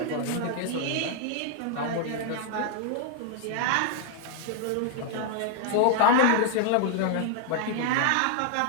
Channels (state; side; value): different; both; correlation 0.00